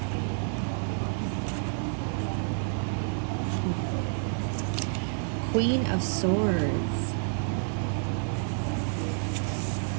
Queen of Swords.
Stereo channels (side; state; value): left; silent; 58 dB below the other